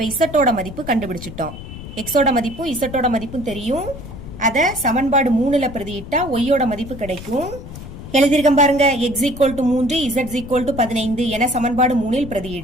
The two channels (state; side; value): noise; left; rumble, 12 dB below the sound